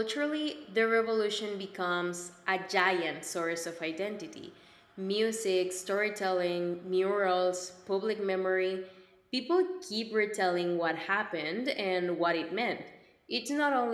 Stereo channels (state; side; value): identical; both; correlation 1.00